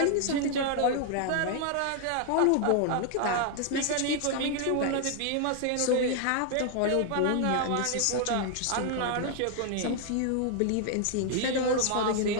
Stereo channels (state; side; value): different; both; correlation 0.00